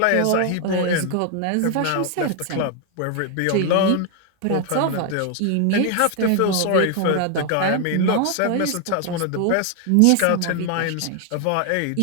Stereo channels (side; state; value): both; different; correlation 0.00